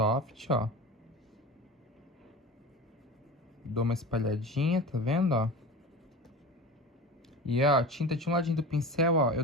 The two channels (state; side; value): normal; both; correlation 0.32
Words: ó. Dou uma espalhadinha, tá vendo, ó? E, ó, tinta de um ladinho do pincel, ó, eu